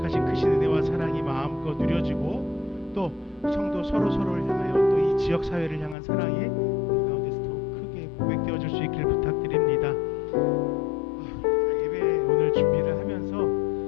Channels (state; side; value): drops out; right; at 6.0 s